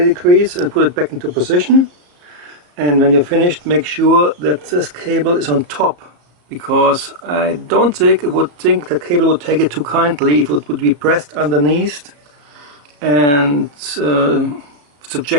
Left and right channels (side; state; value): left; late; 34 ms